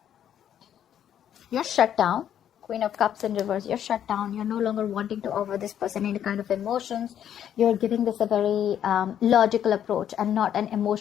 You're shut down. Queen of Cups in reverse. You're shut down. You're no longer wanting to offer this person any kind of emotions. You're giving this a very logical approach and not an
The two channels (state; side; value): quieter; right; 9.9 dB